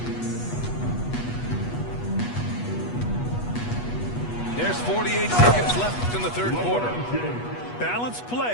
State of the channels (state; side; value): late; right; 8.3 ms